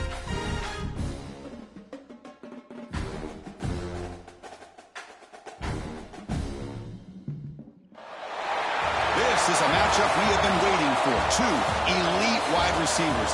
This is a matchup we have been waiting for. Two elite wide receivers.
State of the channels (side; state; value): both; identical; correlation 1.00